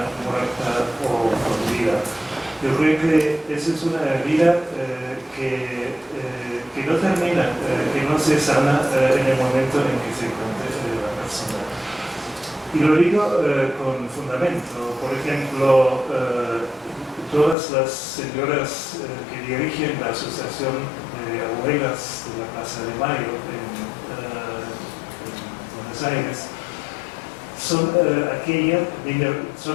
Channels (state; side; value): drops out; right; at 17.6 s